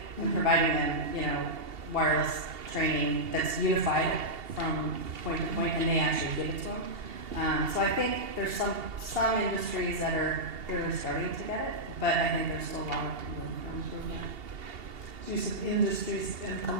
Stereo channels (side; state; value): left; late; 2.8 ms